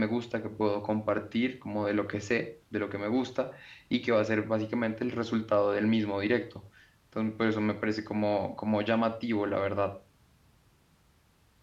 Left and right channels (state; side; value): identical; both; correlation 1.00